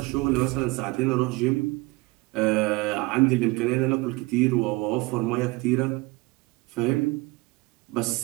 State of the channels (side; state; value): left; quieter; 24.0 dB